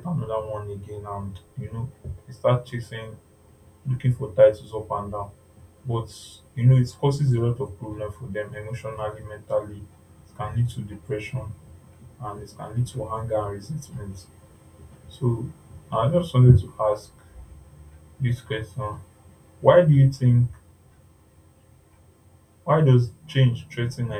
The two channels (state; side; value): identical; both; correlation 1.00